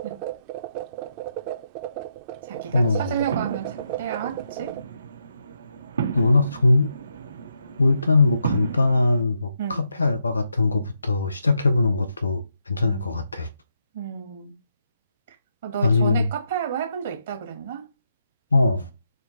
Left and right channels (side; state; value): both; inverted; correlation -0.81